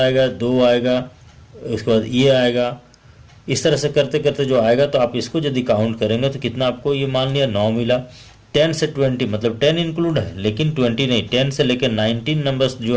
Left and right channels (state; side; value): identical; both; correlation 1.00